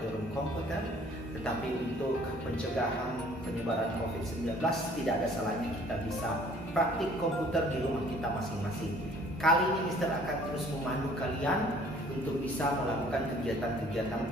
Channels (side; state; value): both; normal; correlation 0.55